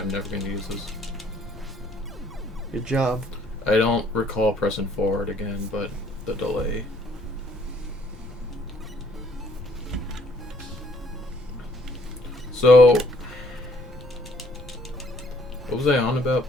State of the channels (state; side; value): noise; left; rumble, 19 dB below the sound